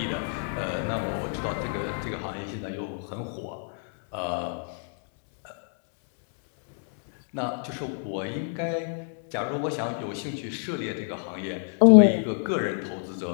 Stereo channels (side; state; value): right; silent; 59 dB below the other